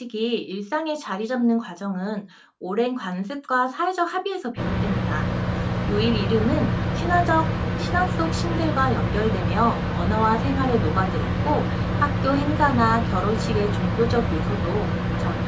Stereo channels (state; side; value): identical; both; correlation 1.00